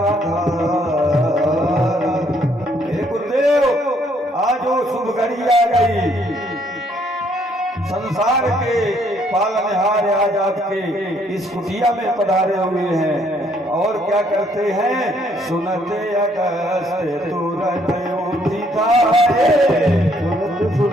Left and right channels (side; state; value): both; normal; correlation 0.67